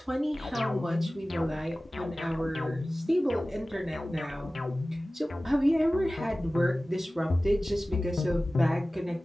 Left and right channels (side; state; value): both; normal; correlation 0.97